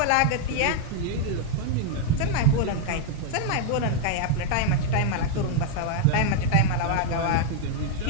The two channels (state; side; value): different; both; correlation 0.00